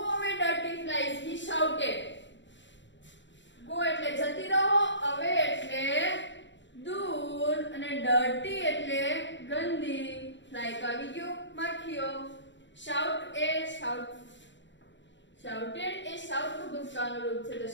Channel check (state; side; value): late; right; 0.53 ms